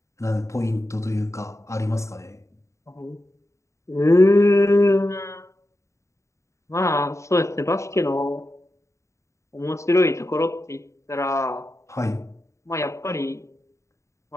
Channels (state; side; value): late; right; 0.14 ms